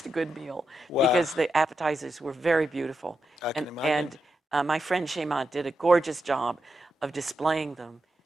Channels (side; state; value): both; normal; correlation 0.86